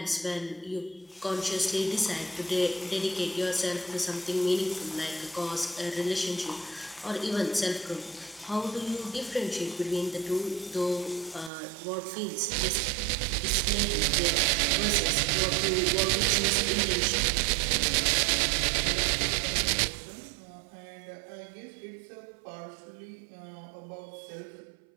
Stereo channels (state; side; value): drops out; left; at 11.5 s